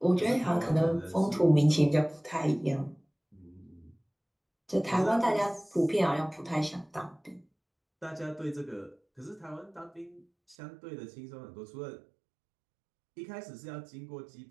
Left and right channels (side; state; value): left; drops out; at 10.6 s